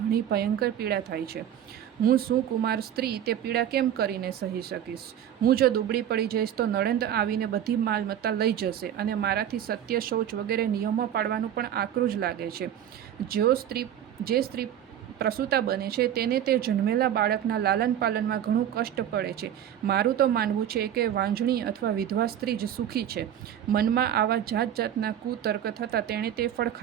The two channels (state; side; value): quieter; left; 10.3 dB